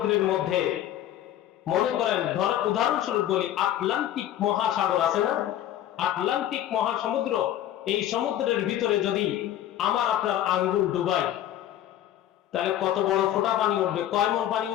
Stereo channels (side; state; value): right; quieter; 11.9 dB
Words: মধ্যে, মনে করেন, উদাহরণস্বরূপ বলি, আটলান্টিক মহাসাগর আছে না? আটলান্টিক মহাসমুদ্র, এই সমুদ্রের ভিতরে যদি আমার আপনার আঙ্গুল ডুবাই, তাহলে কত বড় ফোঁটা পানি উঠবে? কয় মণ পানি